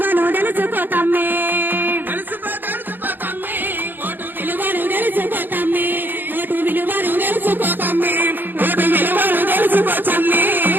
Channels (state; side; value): late; left; 0.092 ms